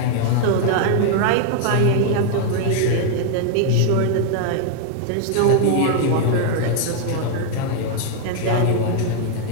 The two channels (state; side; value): different; both; correlation 0.00